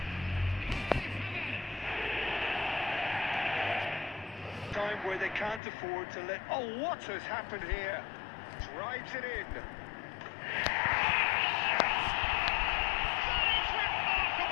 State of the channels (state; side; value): drops out; right; at 5.6 s